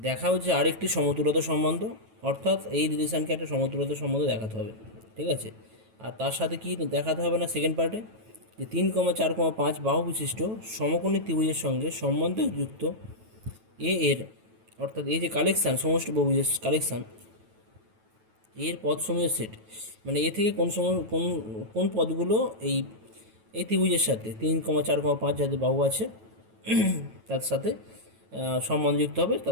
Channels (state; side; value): late; left; 9.2 ms